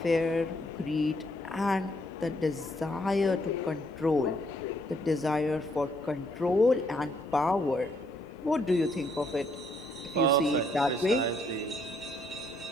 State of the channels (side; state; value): both; normal; correlation 0.70